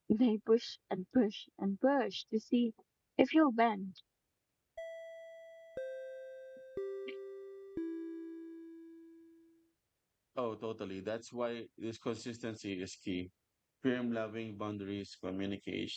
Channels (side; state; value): both; identical; correlation 1.00